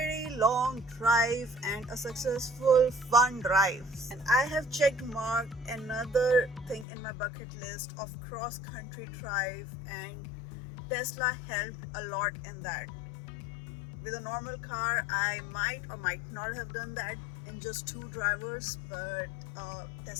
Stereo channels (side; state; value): right; drops out; at 6.9 s